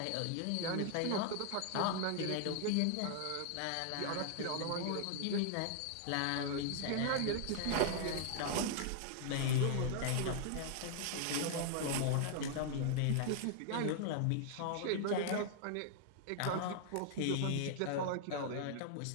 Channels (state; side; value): different; both; correlation 0.00